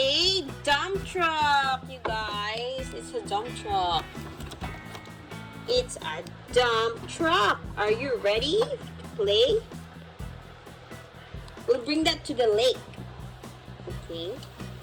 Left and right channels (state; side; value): identical; both; correlation 1.00